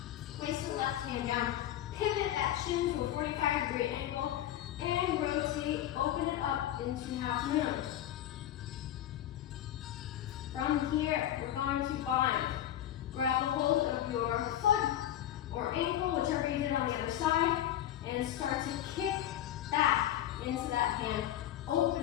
place the left hand down, pivot that shin to a 45-degree angle, and rotate, open it up into half moon. From here, we're going to bind. Grab a hold of your foot or ankle, whichever you did on the other side, and start to kick back into that hand,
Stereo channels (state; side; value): quieter; right; 12.0 dB